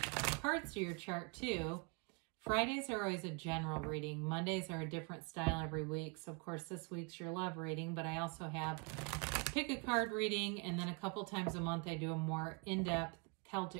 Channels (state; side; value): quieter; left; 32.8 dB